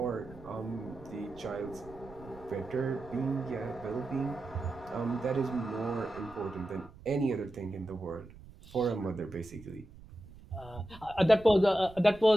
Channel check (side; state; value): right; noise; rumble, 19 dB below the sound